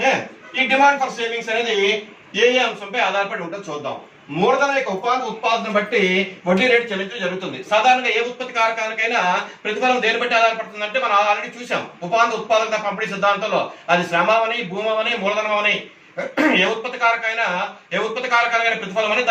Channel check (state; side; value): identical; both; correlation 1.00